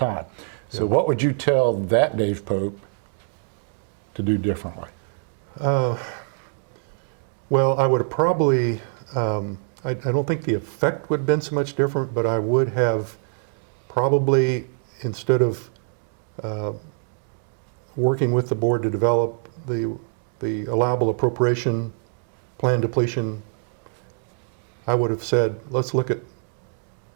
So what would you tell that Dave Pope to do differently? Well, I would have probably, I don't think the effect would have been so much different, but I would have probably, instead of working with the board to develop the allowable appropriation plan depletion, I would have said, let's look at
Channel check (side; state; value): left; silent; 62 dB below the other